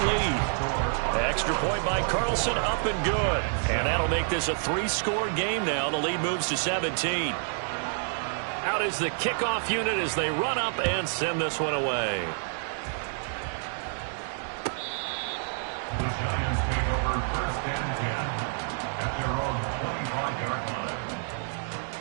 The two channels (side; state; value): left; silent; 59 dB below the other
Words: lead. Extra point by Carlson, up and good. And that'll make this a 3-score game now. The lead moves to 17. Out is the kickoff unit as they run up and send this one away. The Giants take over first and 10 at their own 25-yard line.